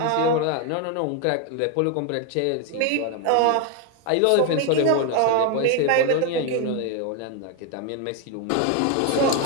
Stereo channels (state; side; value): different; both; correlation 0.01